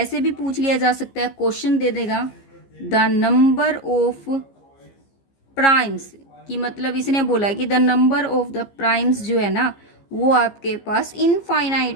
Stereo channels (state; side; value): late; right; 15 ms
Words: भी पूछ लिया जा सकता है, क्वेश्चन दे देगा द नंबर ऑफ प्राइम्स, कि मतलब इसने बोला कि the number of the primes जो है ना वो आपके पास